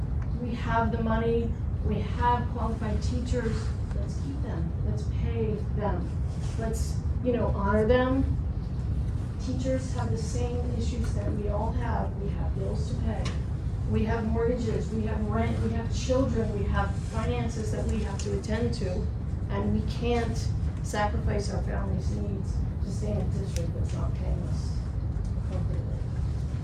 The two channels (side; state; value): both; identical; correlation 1.00